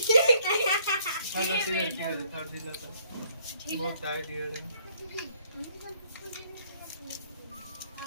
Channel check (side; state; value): both; inverted; correlation -0.64